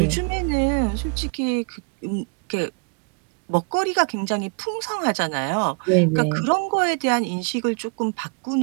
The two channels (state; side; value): quieter; left; 38.0 dB